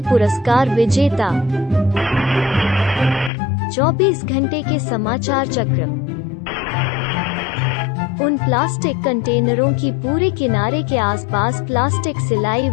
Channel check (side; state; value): right; drops out; at 3.3 s